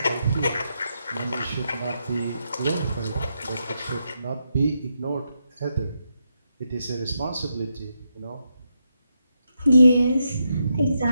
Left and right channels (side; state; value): both; inverted; correlation -0.83